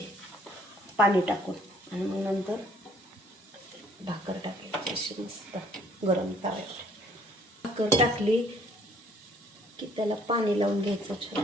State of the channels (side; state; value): both; normal; correlation 0.60